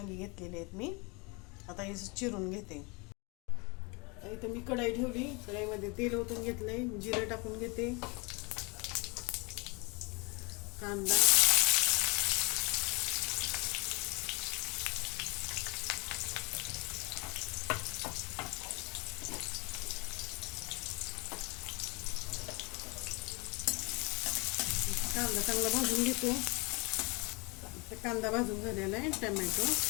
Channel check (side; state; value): right; quieter; 29.4 dB